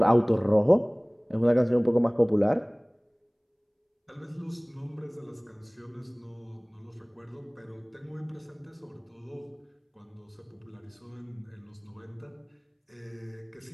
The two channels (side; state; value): both; identical; correlation 1.00